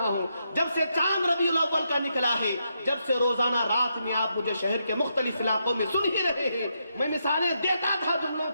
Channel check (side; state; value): both; inverted; correlation -0.81